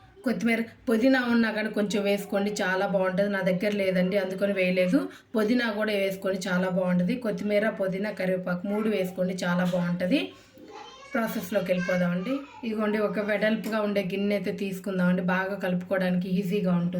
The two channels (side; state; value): both; identical; correlation 1.00